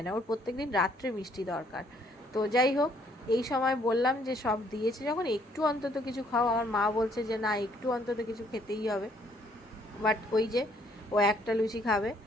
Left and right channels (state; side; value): normal; both; correlation 0.65